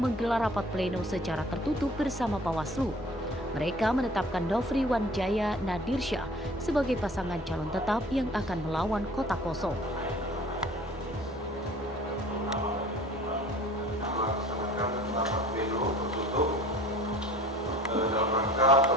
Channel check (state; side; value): normal; both; correlation 0.48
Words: rapat pleno secara tertutup bersama Bawaslu. Mereka menetapkan Nofri Wanjaya Nadirsyah sebagai pasangan calon tetap yang akan melawan kota kosong. Dalam rangka